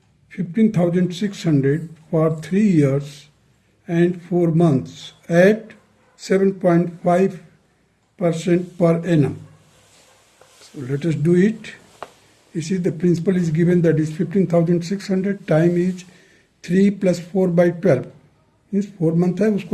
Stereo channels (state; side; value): identical; both; correlation 1.00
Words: 15,600 for 3 years and 4 months at 7.5% per annum. So let us do it. You see the principal is given, that is 15,600, time is 3 plus 4 by 12. Means 4 month है,